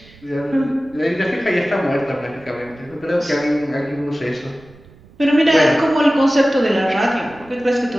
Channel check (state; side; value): noise; right; rumble, 25 dB below the sound